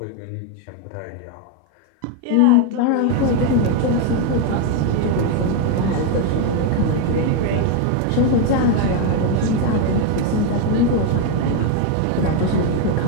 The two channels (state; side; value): different; both; correlation 0.01